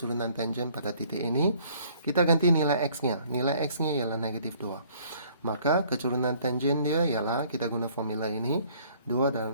tangen pada titik ini, kita ganti nilai x-nya. Nilai x-nya ialah negatif 2. Maka kecerunan tangen dia ialah, kita guna formula ini, 2 dalam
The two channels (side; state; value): both; inverted; correlation -0.59